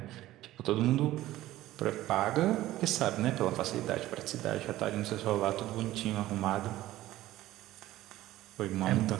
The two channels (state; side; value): quieter; left; 15.4 dB